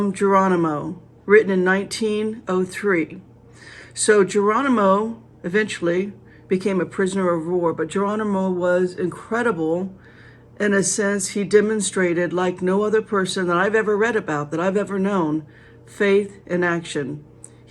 Geronimo, written in 1903. So Geronimo eventually became a prisoner of war, but Geronimo was incredible in a sense. He demonstrated, like no other person that I've ever read about, that I've ever known, faith in action.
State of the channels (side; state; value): both; identical; correlation 1.00